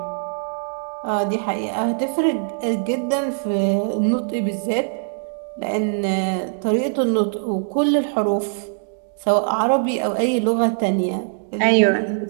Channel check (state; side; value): silent; left; digital silence